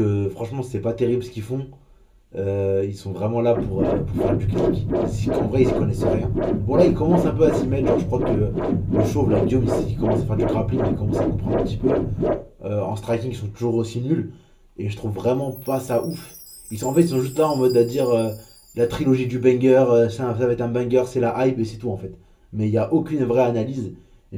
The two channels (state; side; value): identical; both; correlation 1.00